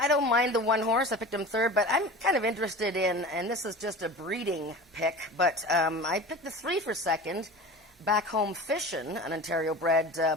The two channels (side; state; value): both; normal; correlation 0.35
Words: don't mind the 1 horse. I picked him 3rd, but I'm kind of interested in, and this is just a breeding pick, but I picked the 3 for 2nd. Back Home Fishin', an Ontario bred